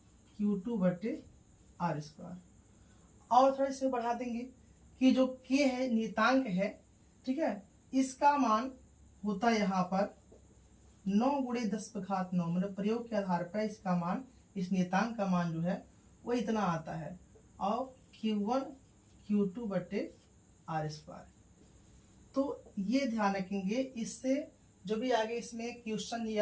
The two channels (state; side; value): identical; both; correlation 1.00